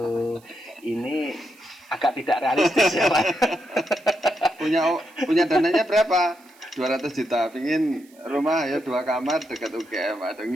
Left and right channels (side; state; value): right; noise; hiss, 28 dB below the sound